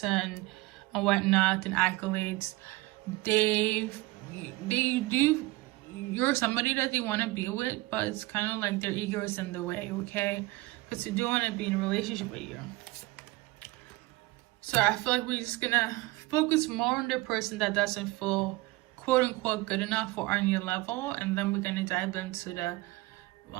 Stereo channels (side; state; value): left; quieter; 20.8 dB